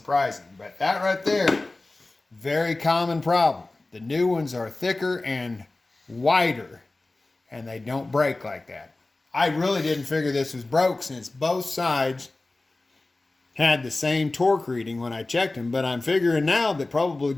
But that right there, very common problem. The new ones are thicker and wider, and they don't break like that. I really didn't figure this was broke since both sides had the same torque reading when I checked them, but I'm figuring now that probably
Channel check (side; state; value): right; quieter; 3.1 dB